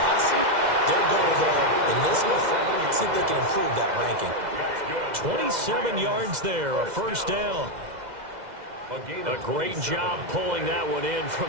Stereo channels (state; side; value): late; left; 2.0 ms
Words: Their goal, though, in this one, see if they can improve that ranking. 27 yards there, a first down. A great job pulling that one in